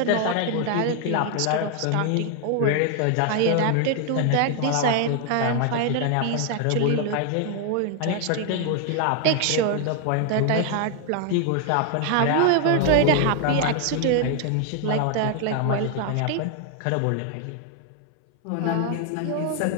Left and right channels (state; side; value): different; both; correlation 0.00